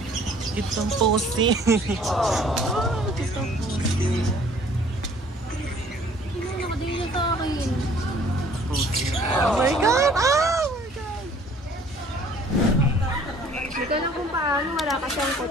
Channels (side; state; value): both; normal; correlation 0.55